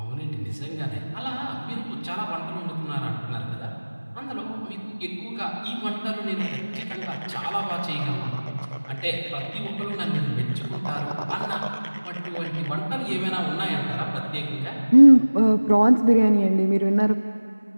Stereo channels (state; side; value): inverted; both; correlation -1.00